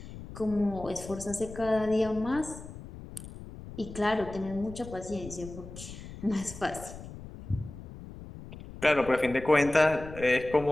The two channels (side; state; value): left; noise; rumble, 13 dB below the sound